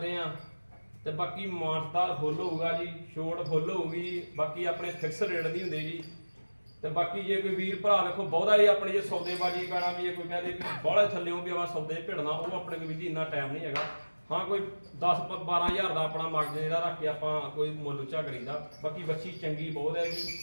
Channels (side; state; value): both; inverted; correlation -1.00